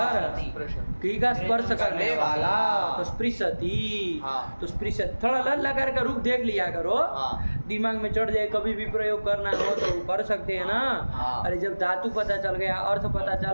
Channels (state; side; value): inverted; both; correlation -1.00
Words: घी का स्पर्श करने वाला, तो स्पृशति, तो स्पृशति थोड़ा लट लकार का रूप देख लिया करो, दिमाग में चढ़ जाए, कभी भी प्रयोग करना हो तो कर सकते हैं ना। अरे जब धातु पता चल गया, अर्थ पता